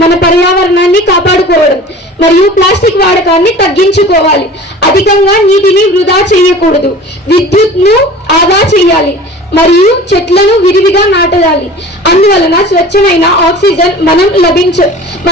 పర్యావరణాన్ని కాపాడుకోవడం మరియు ప్లాస్టిక్ వాడకాన్ని తగ్గించుకోవాలి. అధికంగా నీటిని వృధా చేయకూడదు. విద్యుత్ను ఆదా చేయాలి మరియు చెట్లను విరివిగా నాటాలి. అందువలన స్వచ్ఛమైన ఆక్సిజన్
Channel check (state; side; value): normal; both; correlation 0.41